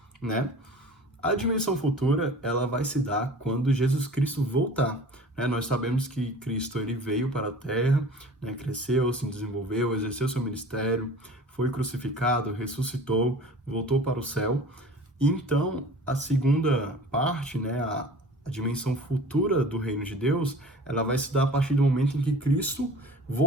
né? A dimensão futura, ela vai se dar quando Jesus Cristo voltar, né? Nós sabemos que Cristo ele veio para a Terra, né? Cresceu, se desenvolveu, exerceu seu ministério, foi crucificado, ressuscitou, voltou para o céu. Então, a segunda parte, né, a dimensão futura do reino de Deus, ela vai se dar a partir do momento em que Cristo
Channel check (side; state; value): both; normal; correlation 0.43